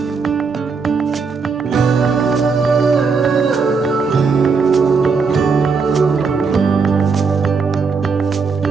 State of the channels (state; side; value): quieter; left; 5.0 dB